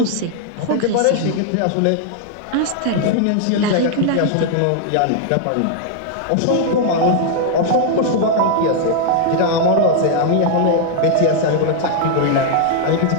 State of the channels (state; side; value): different; both; correlation -0.01